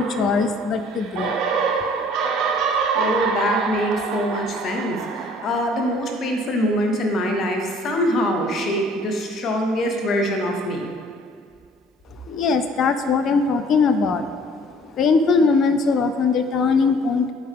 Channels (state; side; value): normal; both; correlation 0.55